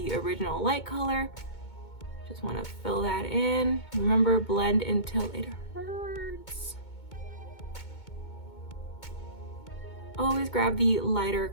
original light color. Just wanna fill that in. Remember, blend until it hurts. Always grab the lighter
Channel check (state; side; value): late; right; 2.2 ms